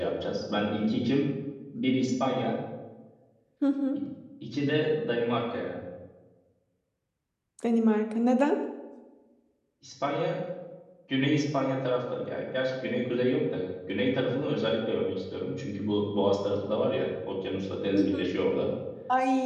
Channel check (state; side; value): identical; both; correlation 1.00